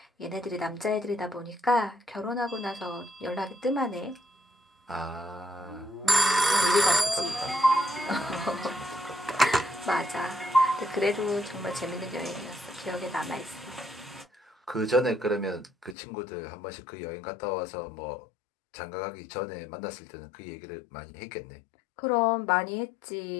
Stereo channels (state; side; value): drops out; right; at 16.0 s